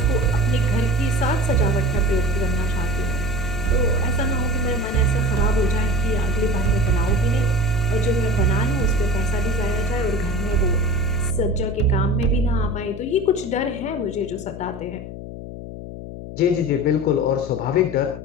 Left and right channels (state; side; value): noise; left; hum, 11 dB below the sound